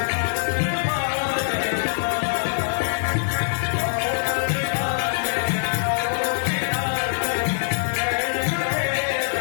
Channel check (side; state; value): right; silent; digital silence